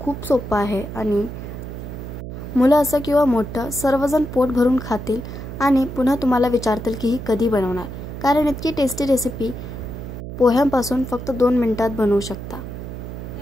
सोपं आहे आणि मुलं असं किंवा मोठं सर्वजण पोट भरून खातील आणि पुन्हा तुम्हाला विचारतील की ही कधी बनवणार, कारण इतकी टेस्टी रेसिपी पोह्यांपासून फक्त 2 मिनिटात बनवू शकता।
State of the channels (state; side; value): noise; right; hum, 9 dB below the sound